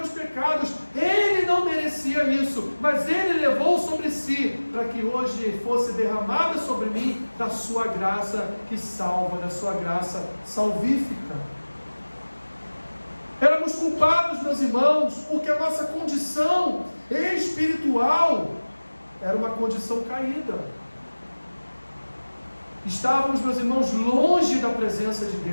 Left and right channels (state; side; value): inverted; both; correlation -1.00